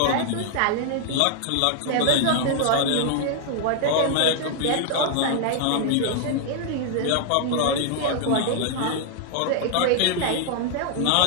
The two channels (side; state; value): both; different; correlation 0.00